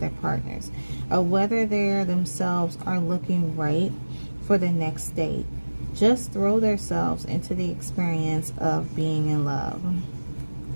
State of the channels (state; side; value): inverted; both; correlation -1.00